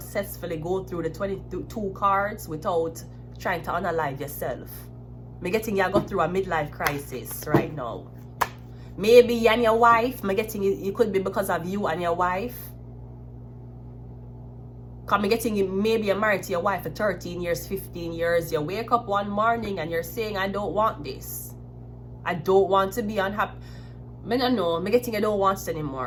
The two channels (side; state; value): both; identical; correlation 1.00